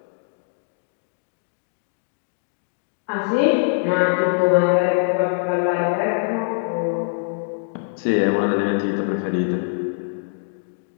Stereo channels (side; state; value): right; silent; digital silence